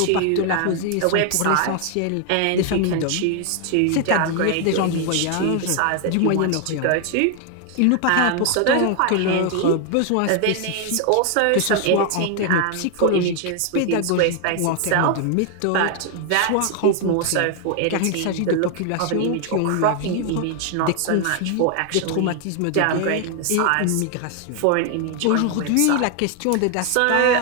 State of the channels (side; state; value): both; different; correlation 0.00